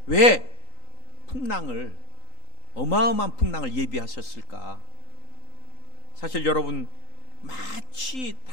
왜 풍랑을, 어마어마한 풍랑을 예비하셨을까? 사실 여러분, 마치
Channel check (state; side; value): late; right; 3.9 ms